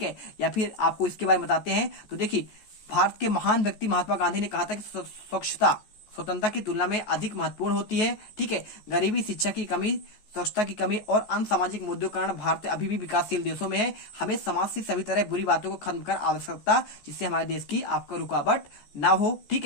है, या फिर आपको इसके बारे में बताते हैं। तो देखिए भारत के महान व्यक्ति महात्मा गांधी ने कहा था कि स्वच्छता स्वतंत्रता की तुलना में अधिक महत्वपूर्ण होती है, ठीक है। गरीबी, शिक्षा की कमी, स्वच्छता की कमी और अन्य सामाजिक मुद्दों के कारण भारत अभी भी विकासशील देशों में है। हमें समाज से सभी तरह बुरी बातों को खत्म कर आवश्यकता, जिससे हमारे देश की आपका रुकावट ना हो, ठीक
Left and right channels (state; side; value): late; right; 14 ms